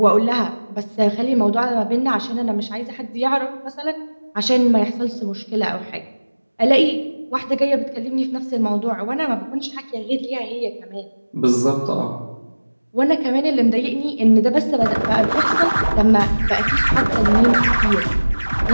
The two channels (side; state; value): both; inverted; correlation -1.00